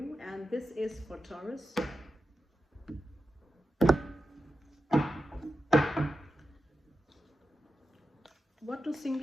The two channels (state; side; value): normal; both; correlation 0.90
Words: And this is for Taurus. What do